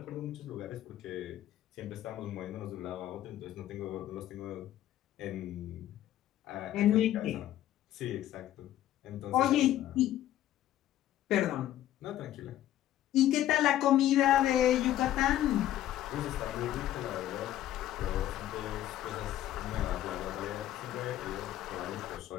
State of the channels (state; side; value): quieter; right; 12.8 dB